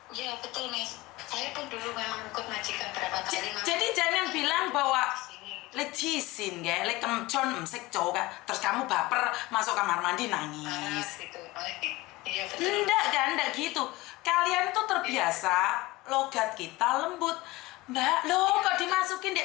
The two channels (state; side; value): quieter; right; 20.5 dB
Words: ya betul Miss. Saya pun dulu memang ikut majikan berapa kali. Jadi jangan bilang bahwa lecisin ya, kemcon mesek cowok, terus kamu baper masuk kamar mandi nangis. Gitu. Iya betul. Enggak gitu. Kalian tuh terbiasa, logat kita lembut. Mbak, loh kok dimasukin di